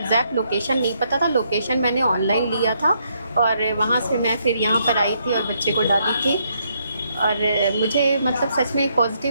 लोकेशन नहीं पता था, लोकेशन मैंने ऑनलाइन लिया था और वहाँ से मैं फिर यहाँ पर आई थी और बच्चे को डाली थी। और मुझे मतलब सच में एक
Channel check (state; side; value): inverted; both; correlation -0.74